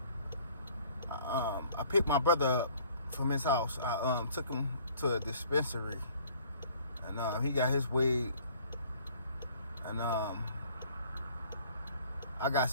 I picked my brother up from his house. I took him to a dispensary, and he got his weed, and I got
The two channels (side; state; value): both; inverted; correlation -0.55